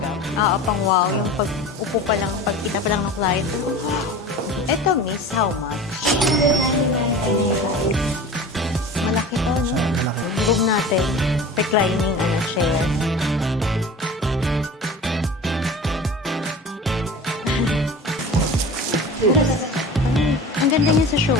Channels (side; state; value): both; normal; correlation 0.36